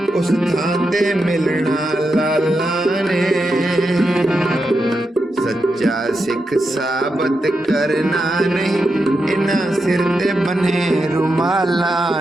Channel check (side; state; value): both; normal; correlation 0.86